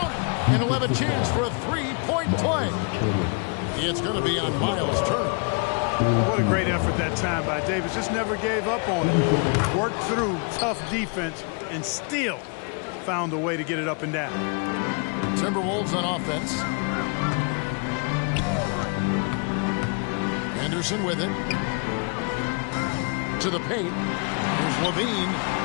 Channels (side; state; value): right; quieter; 36.2 dB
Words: it. And he'll have a chance for a 3-point play. It's going to be on Miles Turner. What a great effort that time by Davis. Just never gave up on it. Worked through tough defense and still found a way to get it up and down. Timberwolves on offense. Anderson with it. To the paint. Here's Levine.